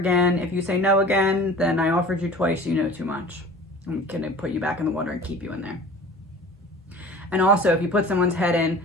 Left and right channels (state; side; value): normal; both; correlation 0.41